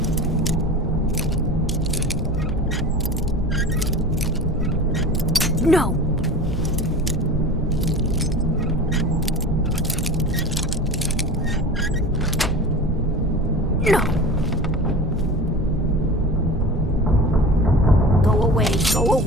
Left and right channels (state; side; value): normal; both; correlation 0.35